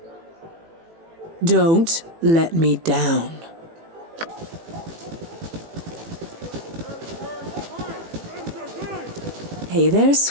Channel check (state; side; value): late; left; 18 ms